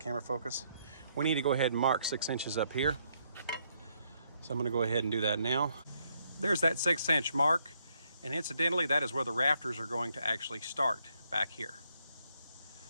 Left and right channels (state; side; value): inverted; both; correlation -0.73